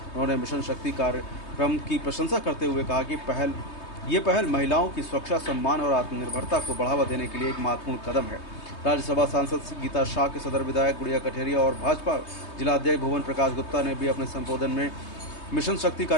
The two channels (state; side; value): late; right; 3.2 ms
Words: उन्होंने मिशन शक्ति कार्यक्रम की प्रशंसा करते हुए कहा कि ये पहल महिलाओं की सुरक्षा, सम्मान और आत्मनिर्भरता को बढ़ावा देने के लिए एक महत्वपूर्ण कदम है। राज्यसभा सांसद गीता शाह के सदर विधायक गुड़िया कठेरिया और भाजपा जिला अध्यक्ष भुवन प्रकाश गुप्ता ने भी अपने संबोधन में मिशन शक्ति